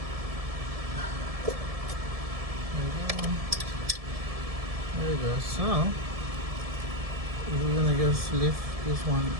There you go. So we're gonna just lift this one,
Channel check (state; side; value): late; left; 1.7 ms